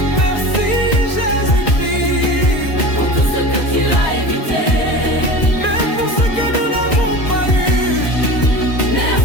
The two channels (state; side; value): late; right; 1.9 ms